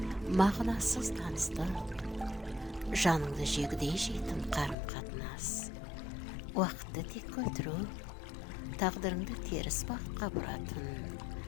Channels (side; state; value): right; drops out; at 4.8 s